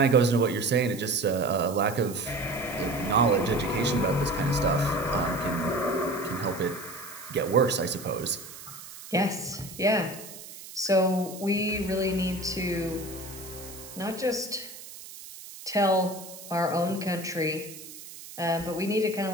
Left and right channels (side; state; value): right; noise; hiss, 15 dB below the sound